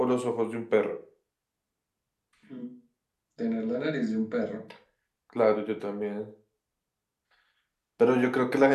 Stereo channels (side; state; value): both; identical; correlation 1.00